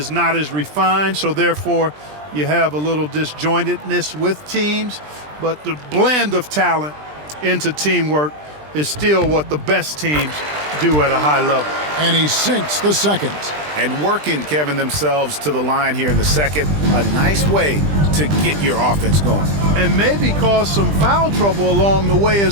not as refined, so therefore you have a little disjointedness with teams. But the blend of talent into teamwork is still what the best teams do at a high level. And he sinks the second. And working, Kevin, themselves to the line here in the second. A nice way to get your offense going. And maybe cause some foul trouble along the way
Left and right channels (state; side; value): late; left; 20 ms